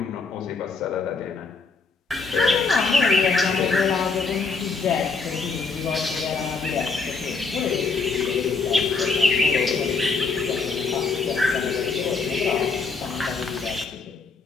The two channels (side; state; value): right; quieter; 4.4 dB